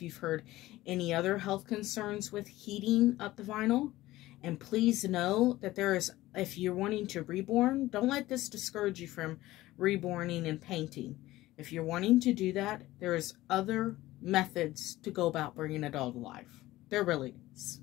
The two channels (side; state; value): right; quieter; 16.9 dB